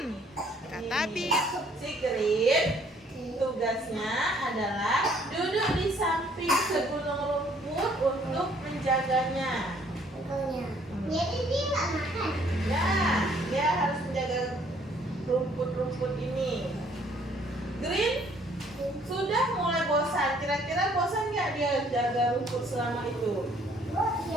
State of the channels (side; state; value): both; normal; correlation 0.62